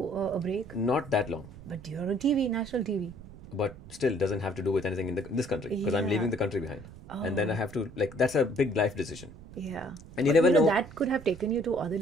a break? Not that long. But you're on TV, national TV. But still doesn't have to do with anything in this country because I'm Yeah. leaving the country behind. And then I Oh. have to, like, that's a big life decision. Yeah. And you But, never know. That could have taken you to other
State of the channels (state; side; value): noise; right; rumble, 17 dB below the sound